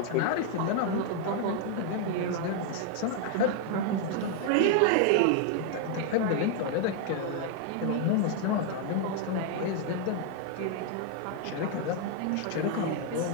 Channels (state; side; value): different; both; correlation 0.00